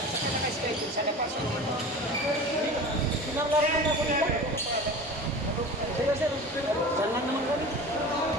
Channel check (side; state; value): both; normal; correlation 0.35